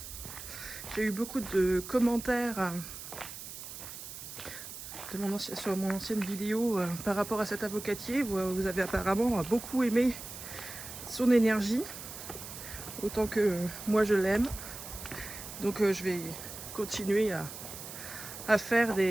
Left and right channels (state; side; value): noise; right; hiss, 11 dB below the sound